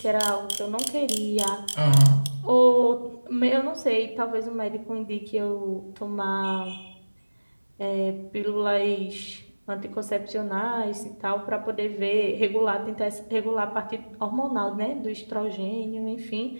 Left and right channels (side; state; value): both; inverted; correlation -1.00